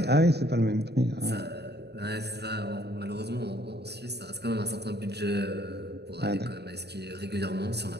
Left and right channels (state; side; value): late; left; 0.48 ms